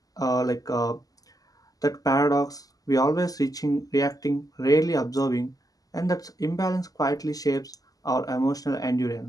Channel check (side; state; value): right; late; 0.17 ms